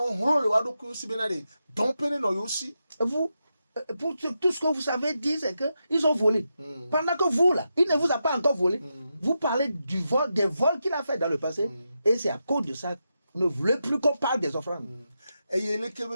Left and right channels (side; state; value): both; inverted; correlation -0.87